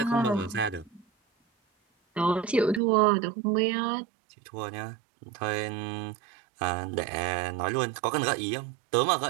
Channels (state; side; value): drops out; left; at 2.8 s